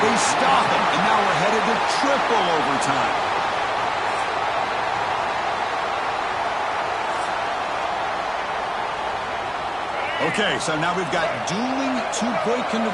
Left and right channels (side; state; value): both; identical; correlation 1.00